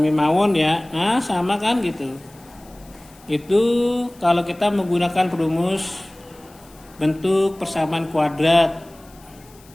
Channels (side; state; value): left; noise; hiss, 26 dB below the sound